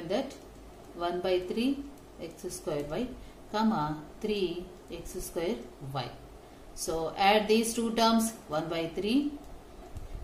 1 by 3 x square y comma 3 x square y. So add these two terms, 1 by 3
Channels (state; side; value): identical; both; correlation 1.00